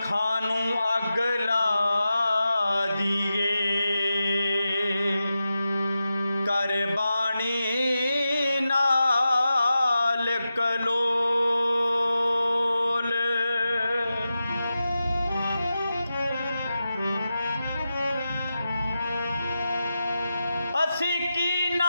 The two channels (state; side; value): inverted; both; correlation -0.91